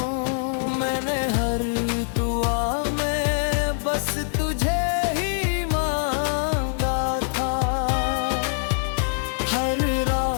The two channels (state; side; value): silent; right; digital silence